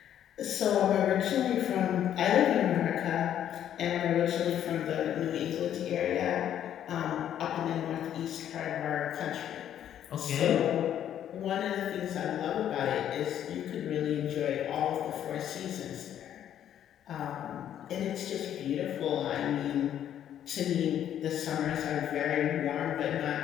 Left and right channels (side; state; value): right; quieter; 10.4 dB